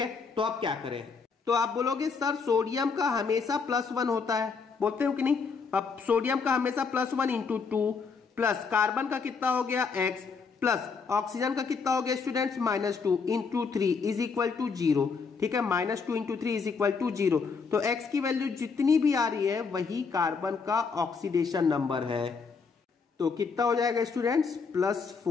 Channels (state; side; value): quieter; right; 5.2 dB